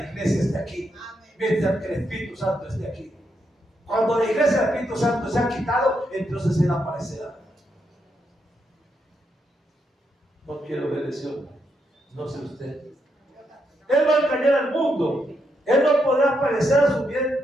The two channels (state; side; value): normal; both; correlation 0.80